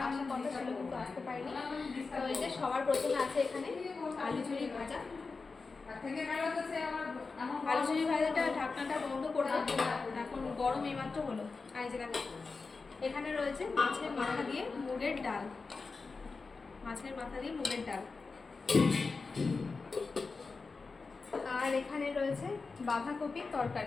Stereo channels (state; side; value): quieter; right; 4.3 dB